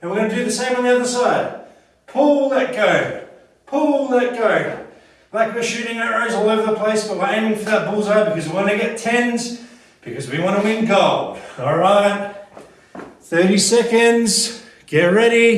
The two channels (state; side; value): identical; both; correlation 1.00